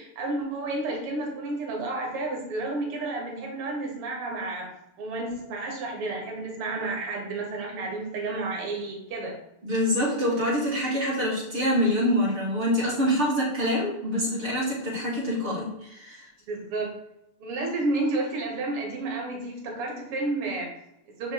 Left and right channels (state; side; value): late; left; 6.6 ms